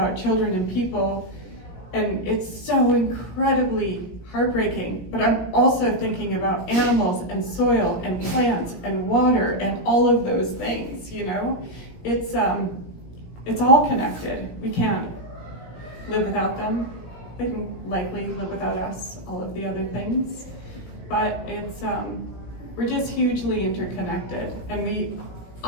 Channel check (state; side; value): late; right; 17 ms